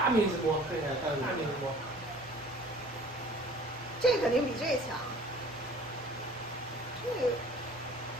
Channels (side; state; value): both; normal; correlation 0.49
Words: 面积摸，对，大面积摸。这肯定比这强。这